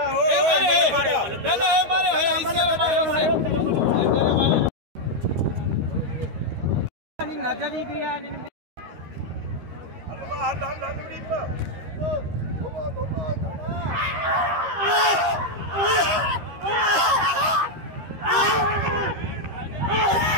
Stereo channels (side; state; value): left; late; 13 ms